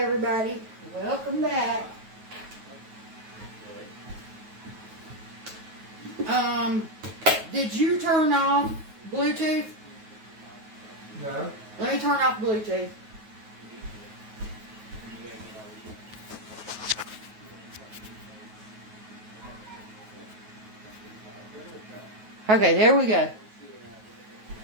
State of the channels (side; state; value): left; late; 9.3 ms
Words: welcome back. Did you turn off Bluetooth? No. Let me turn off Bluetooth. Okay, there we go.